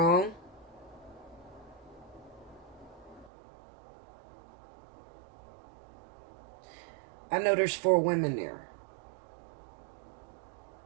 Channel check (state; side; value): drops out; left; at 3.3 s